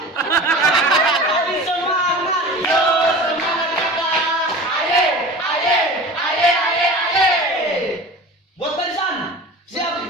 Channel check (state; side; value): normal; both; correlation 0.36